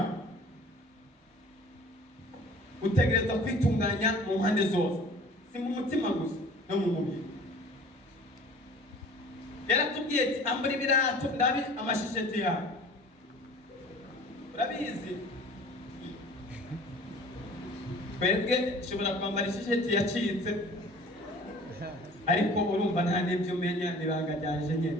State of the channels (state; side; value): normal; both; correlation 0.46